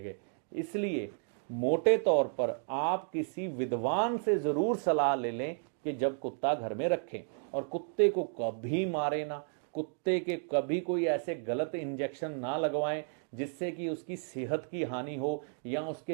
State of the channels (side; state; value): left; silent; 56 dB below the other